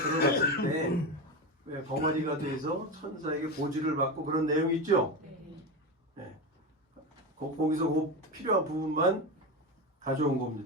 때 왜 벙어리가 돼서 천사에게 보지를 받고 그런 내용이 있죠. 네. 거기서 그 필요한 부분만 가져온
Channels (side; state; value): both; normal; correlation 0.19